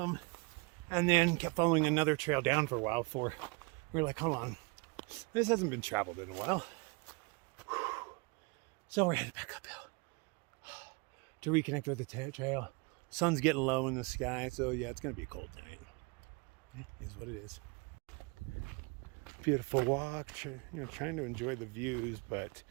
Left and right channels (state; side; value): quieter; left; 29.3 dB